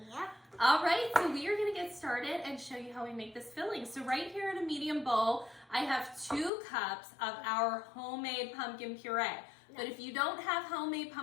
Yep. All right, so we are going to get started and show you how we make this filling. So right here in a medium bowl, I have 2 cups of our homemade pumpkin puree. But if you don't have homemade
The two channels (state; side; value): drops out; right; at 6.5 s